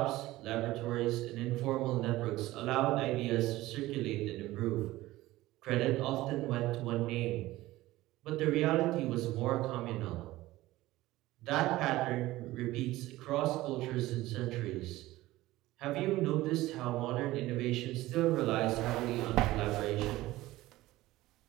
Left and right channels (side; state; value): left; quieter; 17.3 dB